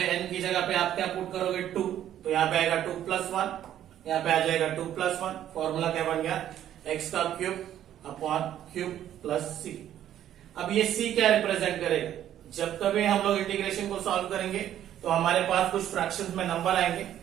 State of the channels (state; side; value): quieter; left; 11.3 dB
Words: एन की जगह पे आप क्या पुट करोगे 2, तो यहाँ पे आएगा 2 प्लस वन, यहाँ पे आ जाएगा 2 प्लस वन. फॉर्मूला क्या बन गया, एक्स का क्यूब अपॉन क्यूब प्लस सी. अब ये सी क्या रिप्रेजेंट करेगा, जब कभी हम लोग इंटीग्रेशन को सॉल्व करेंगे तो हमारे पास कुछ फ्रैक्शंस में नंबर आएंगे,